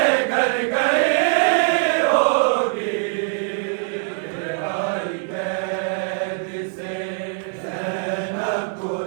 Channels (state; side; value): silent; left; 64 dB below the other